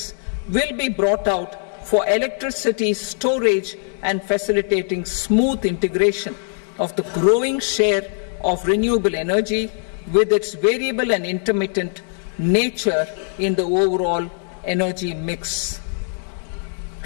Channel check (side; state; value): right; silent; 65 dB below the other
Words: will be brought out for electricity storage and facilitating smooth integration of the growing share of renewable energy with its variable and intermittent nature in the overall energy mix.